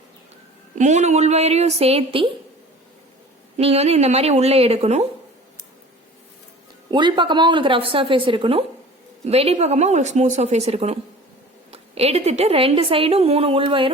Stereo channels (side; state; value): both; normal; correlation 0.42